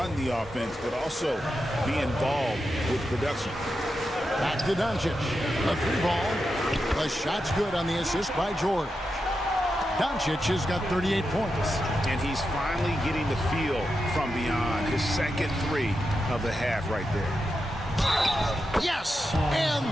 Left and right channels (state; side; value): normal; both; correlation 0.88